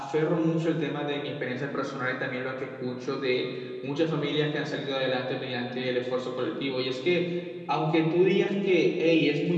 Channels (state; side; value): identical; both; correlation 1.00